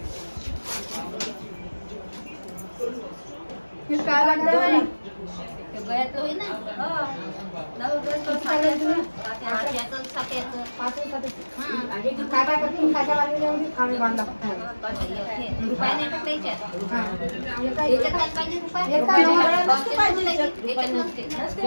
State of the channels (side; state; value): both; inverted; correlation -1.00